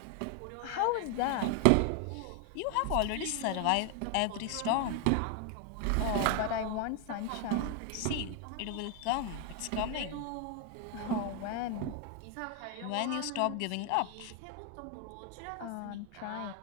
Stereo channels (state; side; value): different; both; correlation 0.00